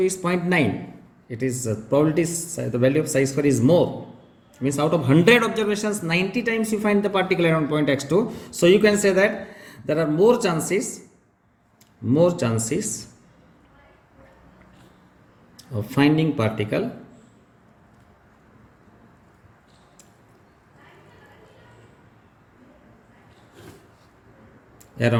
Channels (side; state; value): both; identical; correlation 1.00